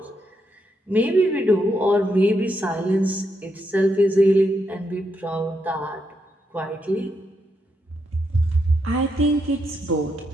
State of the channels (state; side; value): normal; both; correlation 0.81